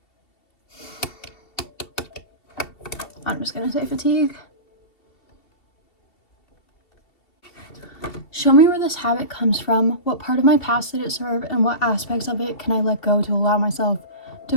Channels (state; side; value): late; right; 2.7 ms